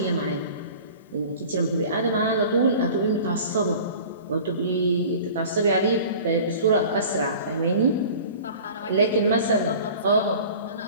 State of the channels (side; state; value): both; inverted; correlation -0.42